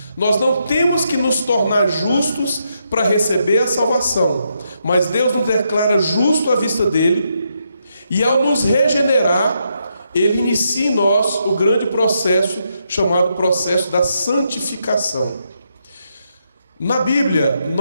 Nós não temos que nos tornar justos para receber a salvação, mas Deus nos declara justo à vista dEle, e ao nos regenerar, Ele inicia em nós o grande processo chamado processo da santificação. Na Bíblia,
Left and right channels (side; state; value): both; inverted; correlation -0.80